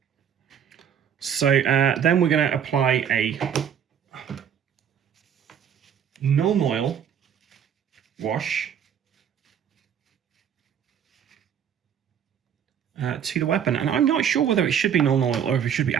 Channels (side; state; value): left; quieter; 8.5 dB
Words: So then we're going to apply a non-oil wash to the weapon. And I'm not sure whether it should be non-oil or if it should be